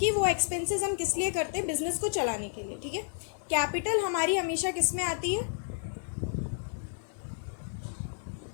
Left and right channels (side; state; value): right; silent; digital silence